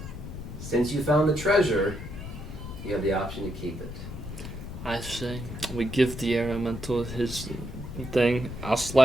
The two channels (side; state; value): left; noise; rumble, 10 dB below the sound